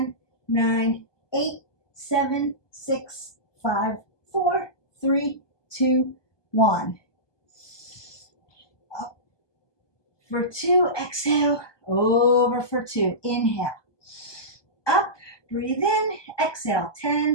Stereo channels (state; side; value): late; right; 1.2 ms